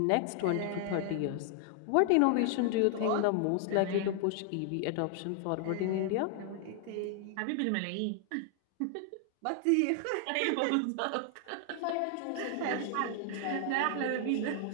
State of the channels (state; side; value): different; both; correlation 0.00